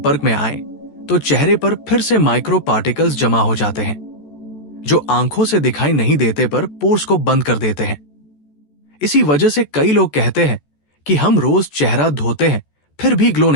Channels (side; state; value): right; late; 14 ms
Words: में आए, तो चेहरे पर फिर से माइक्रो पार्टिकल्स जमा हो जाते हैं, जो आंखों से दिखाई नहीं देते पर पोर्स को बंद कर देते हैं। इसी वजह से कई लोग कहते हैं कि हम रोज चेहरा धोते हैं फिर भी ग्लो